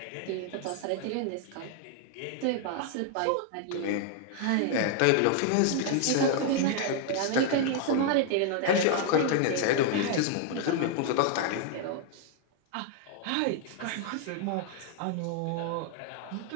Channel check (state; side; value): different; both; correlation 0.00